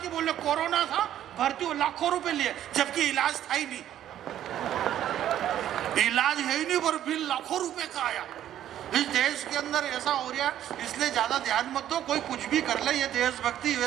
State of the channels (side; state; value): left; quieter; 11.4 dB